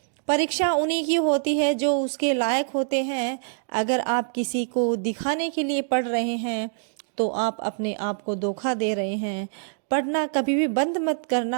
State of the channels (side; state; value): left; silent; digital silence